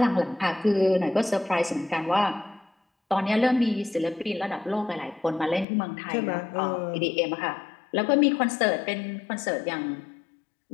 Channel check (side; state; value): right; drops out; at 5.7 s